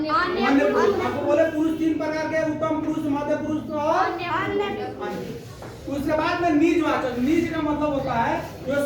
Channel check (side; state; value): both; identical; correlation 1.00